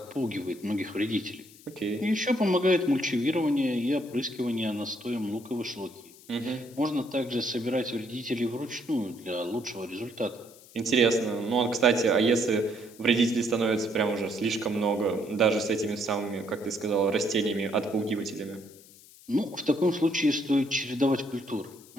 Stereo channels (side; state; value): left; noise; hiss, 23 dB below the sound